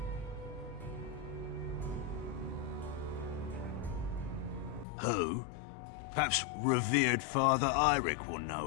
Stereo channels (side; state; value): right; drops out; at 4.9 s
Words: Who? Perhaps revered Father Eirik will